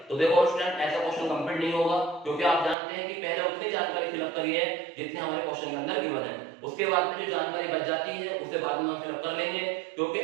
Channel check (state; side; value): drops out; left; at 2.8 s